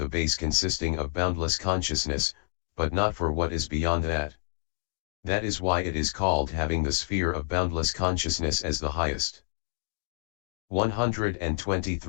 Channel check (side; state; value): right; silent; digital silence